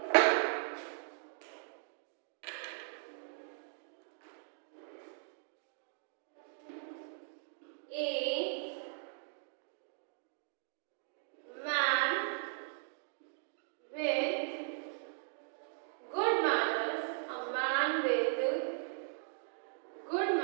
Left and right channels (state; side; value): silent; left; digital silence